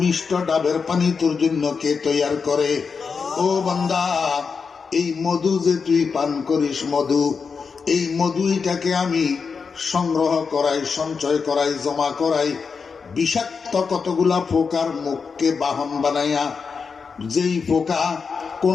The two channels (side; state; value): right; quieter; 5.4 dB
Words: ডাবের পানি তোর জন্য কে তৈয়ার করে? ও বান্দা, এই মধু যে তুই পান করিস, মধু, এই মধুইটাকে আমি সংগ্রহ করাই, সঞ্চয় করাই, জমা করাই বিষাক্ত কতগুলা পোকার মুখকে বাহন বানাইয়া। যেই পোকা